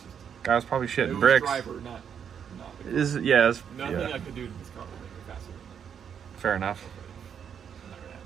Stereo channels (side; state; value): left; quieter; 7.9 dB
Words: Guy was probably it shitting was bricks. driver, not the car. Is yeah, it's, Nothing yeah. I could do to this car would make it faster than Fair enough. that. Not gonna